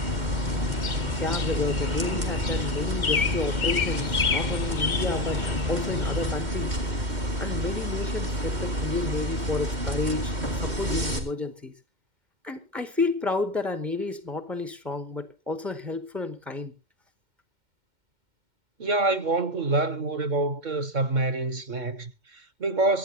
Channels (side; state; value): left; late; 2.1 ms